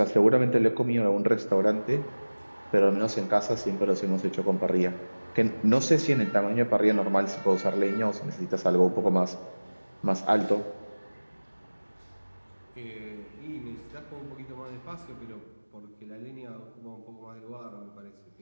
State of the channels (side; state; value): both; inverted; correlation -1.00